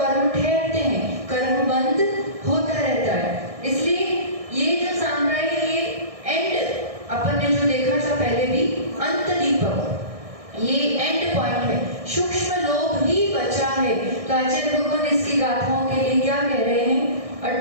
ठहरते हैं, कर्म बंद होता रहता है। इसलिए ये जो सांप्राय है ये एंड, अपन ने जो देखा था पहले भी, अंत दीपक, ये एंड पॉइंट है, सूक्ष्म लोभ ही बचा है। तो आचार्य भगवान इसकी गाथाओं के लिए क्या कह रहे हैं,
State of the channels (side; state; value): left; late; 1.6 ms